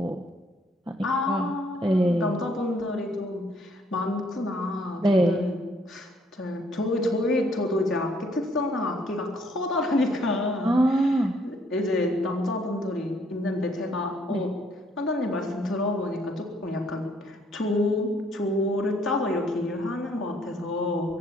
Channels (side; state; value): both; normal; correlation 0.66